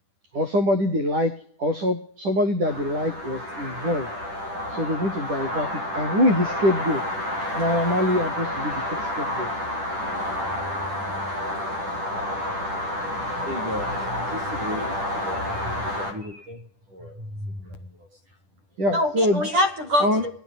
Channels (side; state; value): left; late; 10 ms